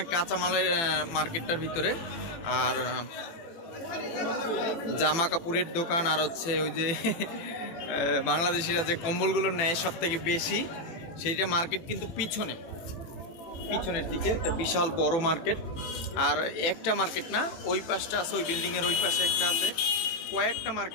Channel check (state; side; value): late; right; 18 ms